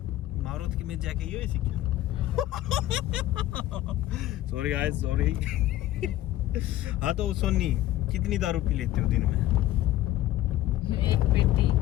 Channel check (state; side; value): quieter; right; 14.3 dB